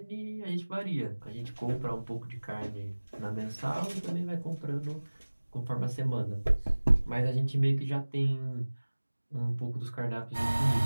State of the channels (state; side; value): inverted; both; correlation -1.00